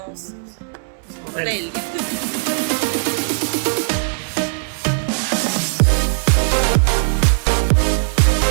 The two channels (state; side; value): silent; left; digital silence